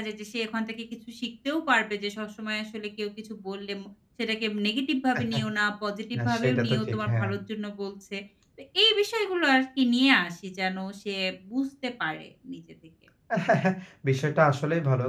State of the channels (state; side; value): identical; both; correlation 1.00